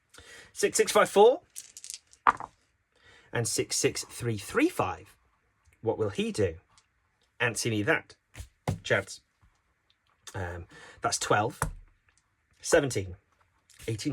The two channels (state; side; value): identical; both; correlation 1.00